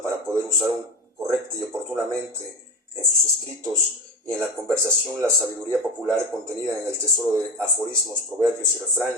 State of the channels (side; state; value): both; normal; correlation 0.20